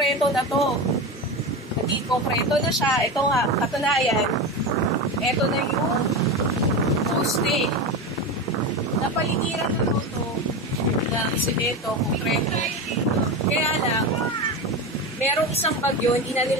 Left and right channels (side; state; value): both; normal; correlation 0.21